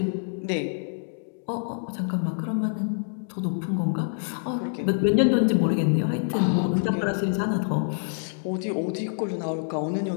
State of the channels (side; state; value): right; silent; digital silence